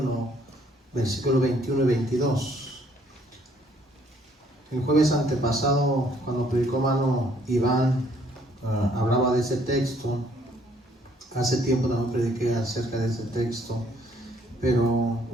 versículo 21 y 22. El jueves antepasado, cuando predicó hermano Iván, hablaba de ese texto. Hace tiempo también prediqué acerca de ese texto, pero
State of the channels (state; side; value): normal; both; correlation 0.64